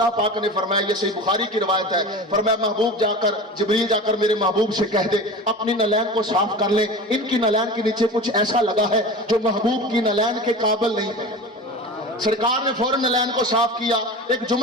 पाक ने फरमाया, ये सही बुखारी की रिवायत है, फरमाया महबूब जाकर, जिब्रील जाकर मेरे महबूब से कह दे अपनी नलैन को साफ कर ले, इनकी नलैन के नीचे कुछ ऐसा लगा है जो महबूब की नलैन के काबिल नहीं है। सरकार ने फौरन नलैन को साफ किया। एक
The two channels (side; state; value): both; normal; correlation 0.33